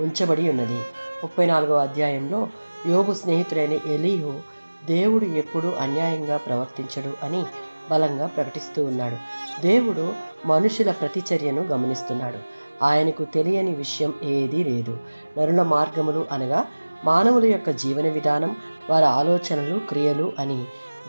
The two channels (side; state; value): both; inverted; correlation -1.00